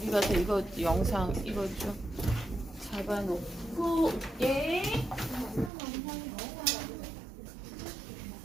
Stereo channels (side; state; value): left; drops out; at 5.7 s